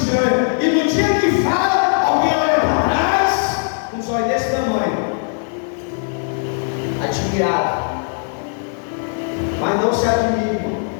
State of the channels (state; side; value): silent; right; 65 dB below the other